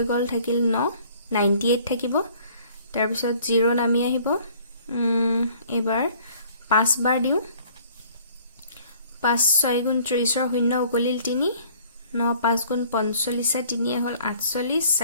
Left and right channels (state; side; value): inverted; both; correlation -0.55